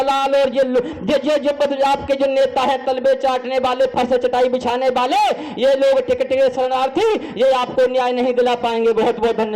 और ये आपके जो नेता है, तलबे चाटने वाले, फर्श चटाई बिछाने वाले, ये लोग टिकट के शरणार्थी, ये आपको न्याय नहीं दिला पाएंगे। बहुत बहुत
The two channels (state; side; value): identical; both; correlation 1.00